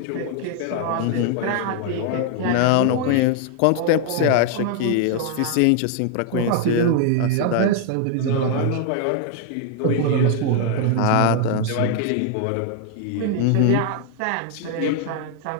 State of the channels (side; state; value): both; different; correlation 0.00